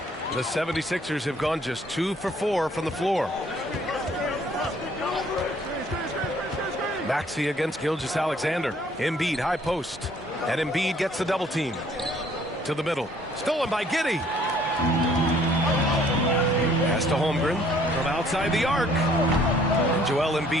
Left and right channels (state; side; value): normal; both; correlation 0.60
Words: The 76ers have gone just 2 for 4 from the floor. Maxey against Gilgeous-Alexander. Embiid high post. And Embiid gets the double team. To the middle. Stolen by Giddey. Pass to Holmgren from outside the arc. Joel